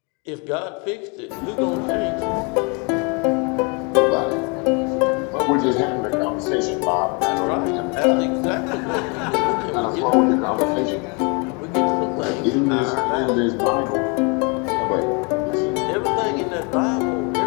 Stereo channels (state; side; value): quieter; right; 32.8 dB